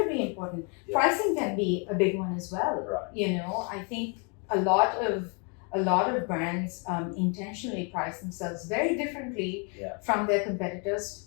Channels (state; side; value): quieter; right; 36.2 dB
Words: important. Pricing can be a big one as well. Right. I think a lot of brands intentionally price themselves very differently from their competitors,